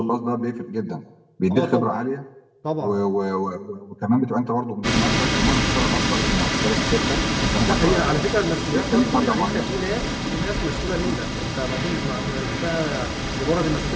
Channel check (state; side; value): identical; both; correlation 1.00